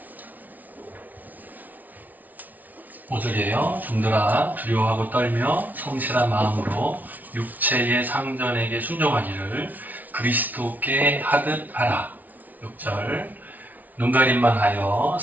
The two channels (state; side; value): late; left; 0.079 ms